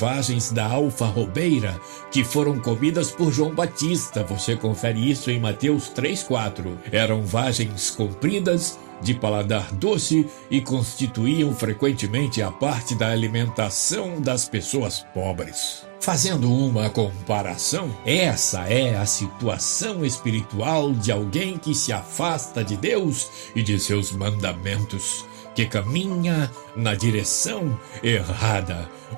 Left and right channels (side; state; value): left; silent; digital silence